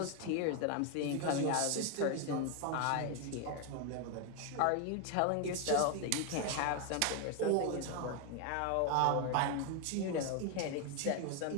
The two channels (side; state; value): both; different; correlation 0.01